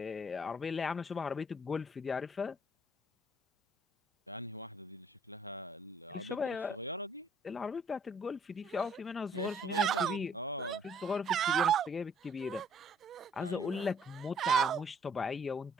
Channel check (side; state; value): both; normal; correlation 0.62